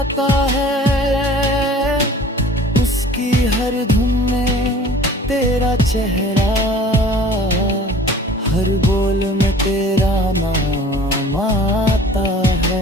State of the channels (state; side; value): normal; both; correlation 0.47